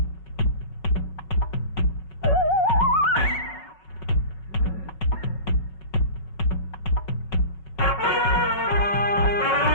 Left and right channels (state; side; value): late; right; 5.4 ms